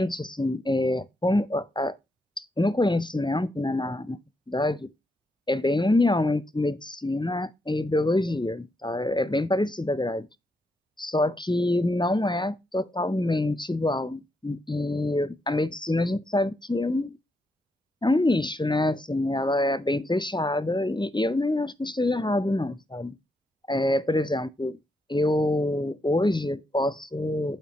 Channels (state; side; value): normal; both; correlation 0.80